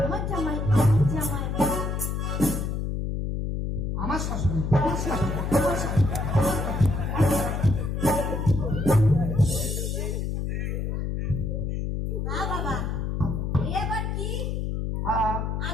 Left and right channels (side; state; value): left; noise; hum, 1 dB below the sound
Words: আমার জামাই, আমার জামাই। আমার শাশুড়ি, আমার শাশুড়ি, আমার শাশুড়ি। হ্যাঁ বাবা, এবার কি হ্যাঁ